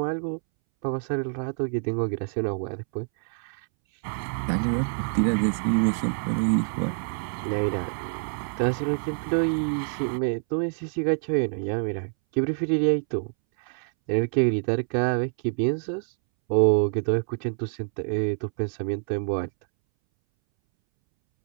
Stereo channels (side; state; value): left; silent; 61 dB below the other